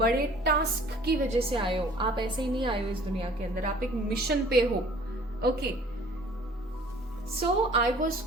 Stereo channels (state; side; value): normal; both; correlation 0.52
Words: टास्क की वजह से आए हो। आप ऐसे ही नहीं आए हो इस दुनिया के अंदर, आप एक मिशन पे हो, okay. So I was